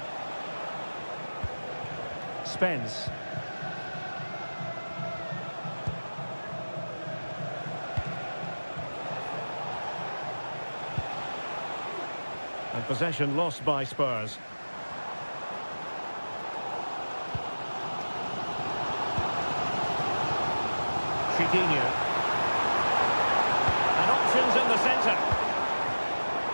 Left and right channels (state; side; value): inverted; both; correlation -1.00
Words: Spence. And possession lost by Spurs. Chiquinho. And options in the centre.